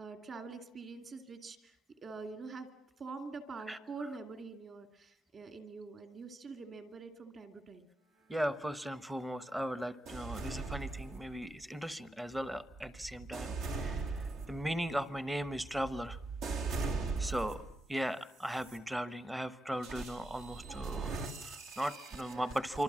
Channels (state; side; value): normal; both; correlation 0.86